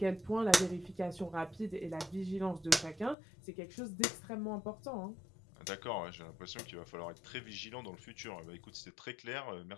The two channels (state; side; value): drops out; right; at 3.2 s